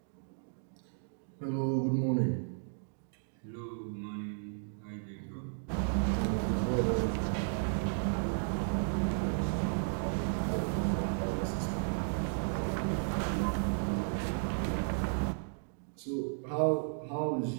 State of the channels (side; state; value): left; silent; digital silence